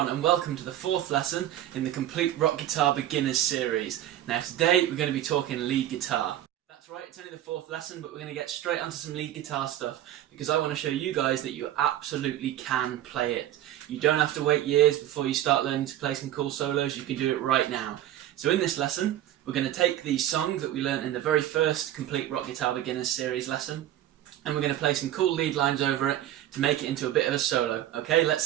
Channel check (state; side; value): quieter; left; 12.5 dB